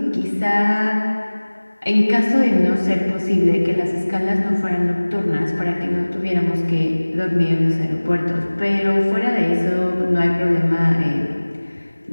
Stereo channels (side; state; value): both; inverted; correlation -1.00